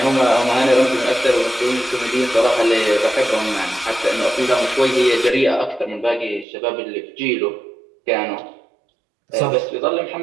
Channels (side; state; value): left; drops out; at 6.5 s